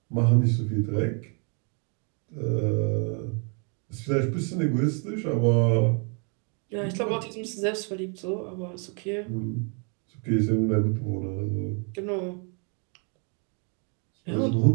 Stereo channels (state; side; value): quieter; left; 37.6 dB